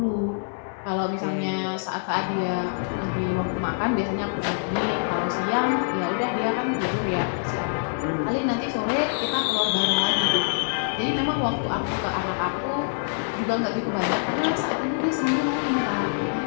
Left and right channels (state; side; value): silent; right; 62 dB below the other